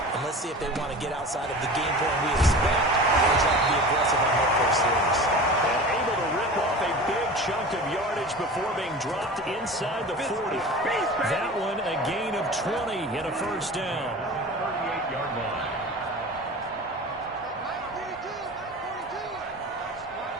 And let's see if they want to get outside of the game plan we expect and try to be aggressive on their first series. And able to rip off a big chunk of yardage before being dropped inside the 40. That one a gain of 20 and a 1st down. 38-yard line.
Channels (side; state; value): both; normal; correlation 0.35